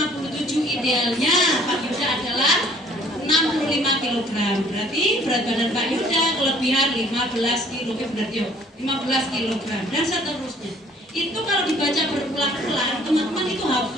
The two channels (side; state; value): both; normal; correlation 0.57